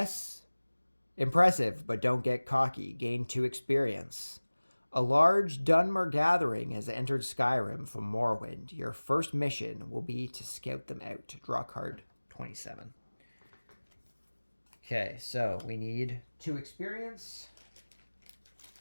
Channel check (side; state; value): both; inverted; correlation -1.00